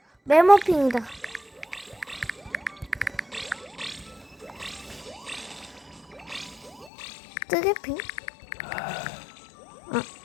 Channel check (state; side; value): drops out; right; at 6.9 s